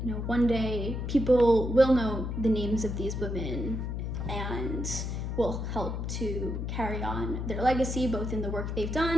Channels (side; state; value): left; noise; hum, 3 dB below the sound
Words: one day people will know the names of these women and will help to carry on their legacy, both in the work they've